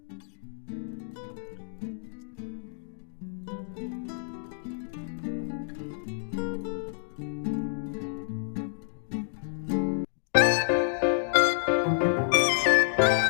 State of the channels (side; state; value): right; silent; digital silence